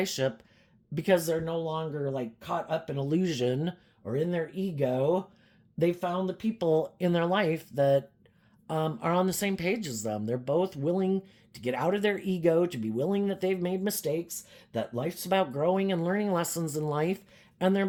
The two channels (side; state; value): both; identical; correlation 1.00